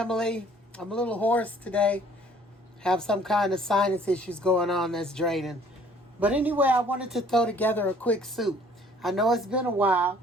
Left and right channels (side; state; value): both; normal; correlation 0.56